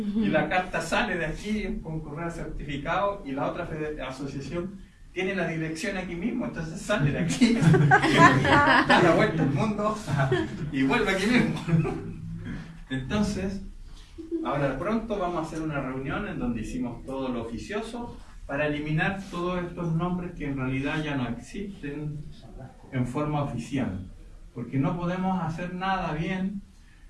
la carta sale de aquí con correo certificado, y la otra asociación tiene la dirección aquí mismo, entonces sale de aquí, da la vuelta al mundo y vuelve aquí mismo. Entonces, ahora pronto vamos a hacer una reunión en donde hicimos todo lo oficioso para eliminar todos estos nombres que en realidad ya no existen en forma oficial, porque no podemos hacer nada bien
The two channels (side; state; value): both; identical; correlation 1.00